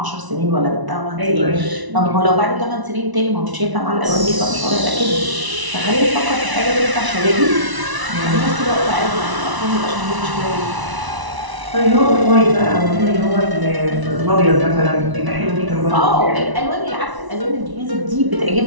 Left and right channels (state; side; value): late; left; 1.0 ms